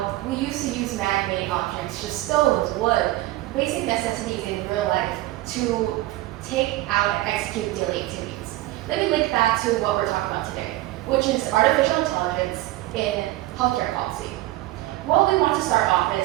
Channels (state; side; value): quieter; left; 17.2 dB